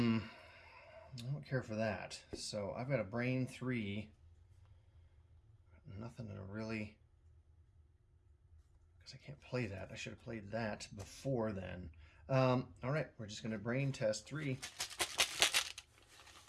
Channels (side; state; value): both; identical; correlation 1.00